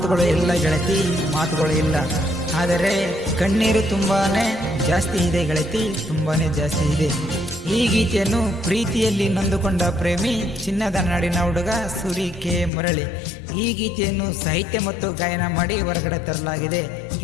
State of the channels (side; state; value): right; drops out; at 12.7 s